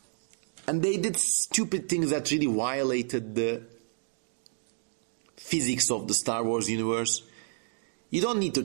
And they did stupid things that really violated the physics of the Star Wars universe. You don't need to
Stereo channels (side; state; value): left; silent; digital silence